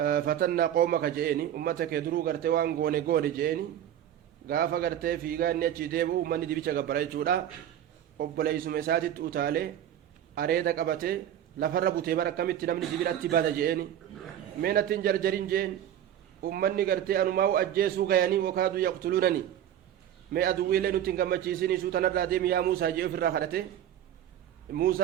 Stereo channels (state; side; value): quieter; left; 10.8 dB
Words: قومك جئني أمتك يدرو غرتي وان غوني جئني غافا غرتي في غاني أجي ديبو أمني دي بيشا غبراي جودا أبلي سمساتي تؤتالي أريدا قبتي لفر بوتي بركمت نمني جبراتي بادا جئني مينة جرجرين جئن أمني غرتي أنماو أجيسو غياني وكادو يقتلونني مي أدوي لنو تنغمچيسيني سوتنا راديم يا موسى جئ في الراخرته